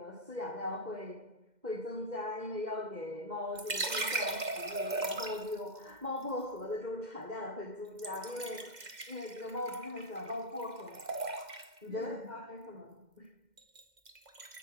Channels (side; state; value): left; late; 2.1 ms